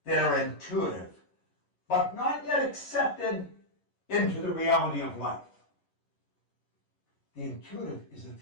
that are intuitive, but not yet accepted into the reality of life. The intuitive is a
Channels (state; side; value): late; right; 11 ms